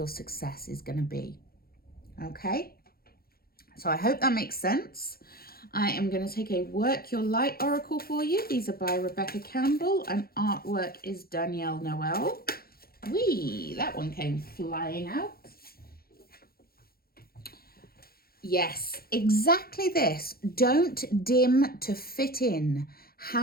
success is going to be, okay? So I hope that makes sense. I am going to take a Work Your Light Oracle for you. These are by Rebecca Campbell and artwork is Danielle Noel. Whee, that one came flying out. Yes, exactly this. Don't dim to fit in.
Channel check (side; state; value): right; late; 0.44 ms